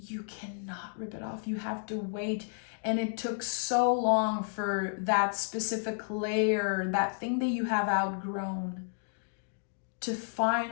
cannot rip it off. You have to wait. And it took so long for that specific layer, that thing that you have outgrown, to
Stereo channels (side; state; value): right; silent; digital silence